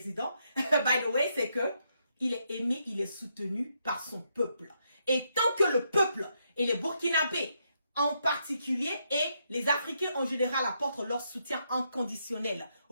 by the way, c'est que il est aimé, il est soutenu par son peuple. Et tant que le peuple et les Burkinabés en particulier et les Africains en général apportent leur soutien inconditionnel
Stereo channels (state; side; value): inverted; both; correlation -0.78